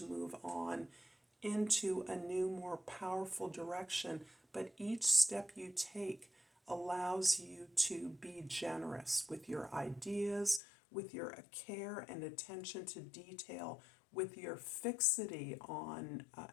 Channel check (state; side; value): drops out; right; at 10.6 s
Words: move on into a new, more powerful direction. But each step you take allows you to be generous with your ideas, with your care and attention to detail, with your fixity on